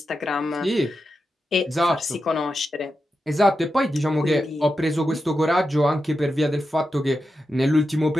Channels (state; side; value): normal; both; correlation 0.89